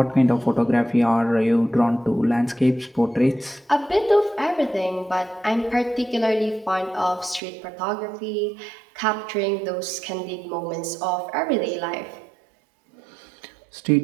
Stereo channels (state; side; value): drops out; left; at 7.4 s